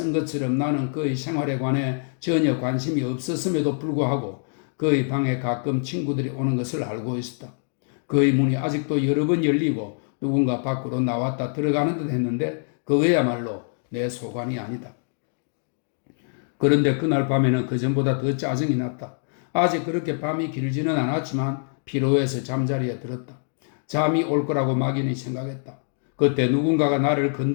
것처럼 나는 그의 생활에 관해 전혀 관심이 없었음에도 불구하고 그의 방에 가끔 친구들이 오는 것을 알고 있었다. 그의 문이 아직도 여러 번 열리고 누군가 밖으로 나왔다 들어가는 듯 했는데 그거야말로 내 소관이 아니다. 그런데 그날 밤에는 그전보다 더 짜증이 났다. 아직 그렇게 밤이 길지는 않았지만 피로해서 잠자리에 들었다. 잠이 올 거라고 막연히 생각했다. 그때 누군가가 나를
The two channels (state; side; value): silent; right; 62 dB below the other